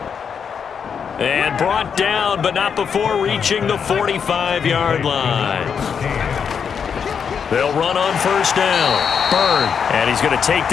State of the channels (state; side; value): quieter; right; 6.9 dB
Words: And brought down, but not before reaching the 45-yard line. They'll run on 1st down. Bird. And he's going to take